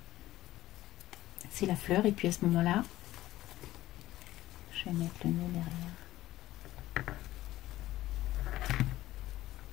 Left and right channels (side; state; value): right; quieter; 15.5 dB